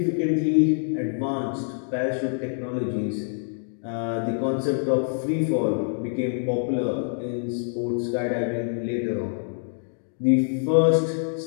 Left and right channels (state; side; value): silent; right; digital silence